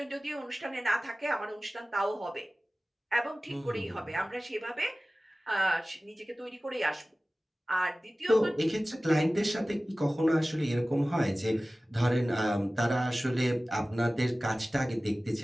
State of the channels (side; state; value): both; normal; correlation 0.97